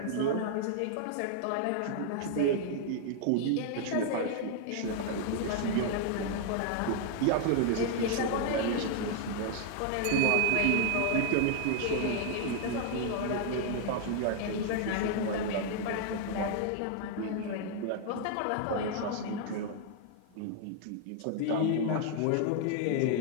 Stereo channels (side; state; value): both; different; correlation 0.00